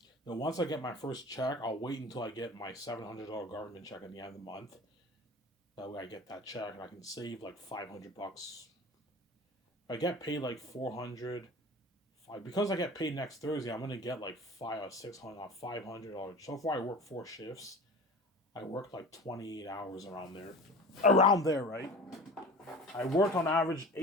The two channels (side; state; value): both; normal; correlation 0.38